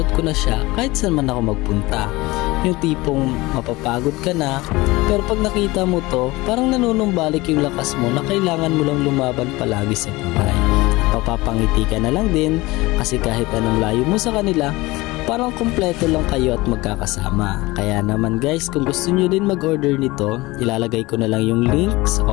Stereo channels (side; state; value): right; quieter; 21.0 dB